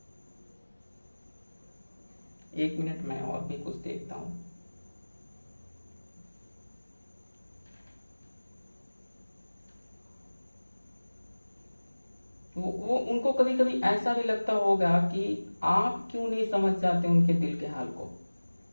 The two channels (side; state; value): both; inverted; correlation -1.00